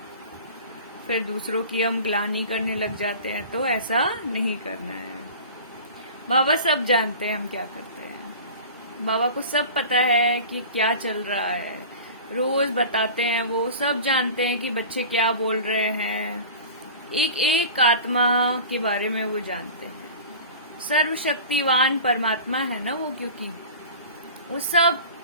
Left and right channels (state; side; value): inverted; both; correlation -0.37